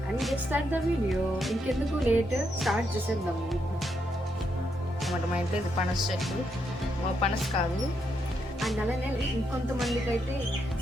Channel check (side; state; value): both; normal; correlation 0.79